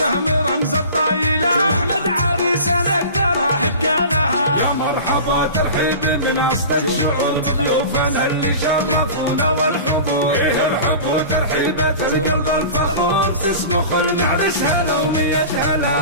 رمز الطايلة احمد عريس نقدر احب قالها. يا مرحبا ترحيب بناس الشعور بضيوفنا اللي شرفونا والحضور. ايه الحب وترحيبة القلب الفخور تسمح المعرس هلا ومية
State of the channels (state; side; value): inverted; both; correlation -0.36